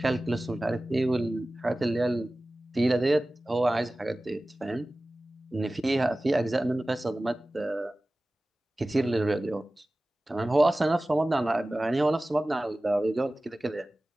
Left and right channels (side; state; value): both; normal; correlation 0.97